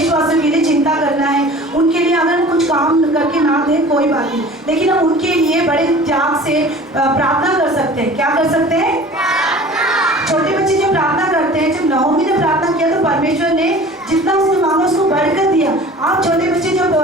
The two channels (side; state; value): both; normal; correlation 0.43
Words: के लिए चिंता करना है। उनके लिए अगर कुछ काम करके ना दे कोई बात नहीं, लेकिन हम उनके लिए बड़े त्याग से प्रार्थना कर सकते हैं। क्या कर सकते हैं? छोटे बच्चे जब प्रार्थना करते हैं, जब नहोमी ने प्रार्थना किया तो परमेश्वर ने जितना उसने मांगा उसको बढ़कर दिया। आप छोटे बच्चे जब